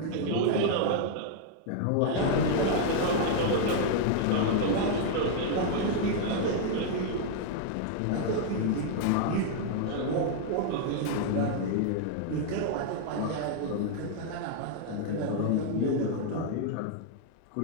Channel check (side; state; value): both; different; correlation 0.00